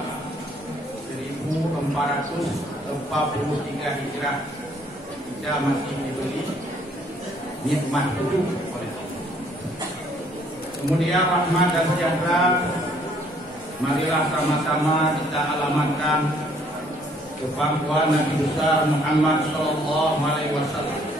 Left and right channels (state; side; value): normal; both; correlation 0.64